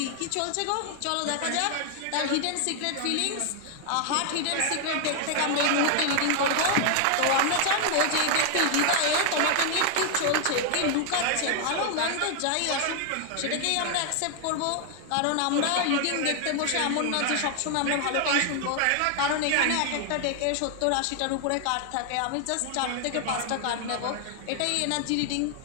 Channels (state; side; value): different; both; correlation 0.00